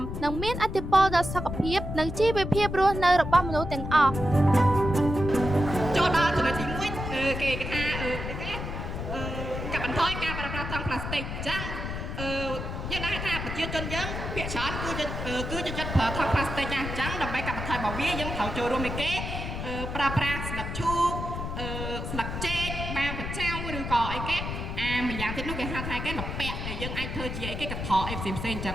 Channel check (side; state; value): left; noise; rumble, 5 dB below the sound